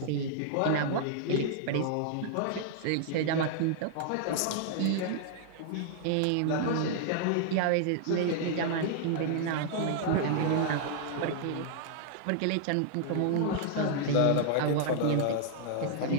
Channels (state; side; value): different; both; correlation -0.01